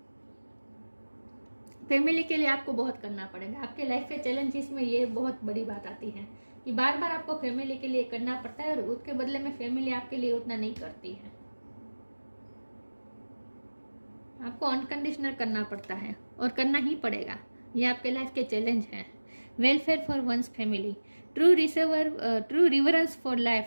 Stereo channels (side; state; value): both; inverted; correlation -1.00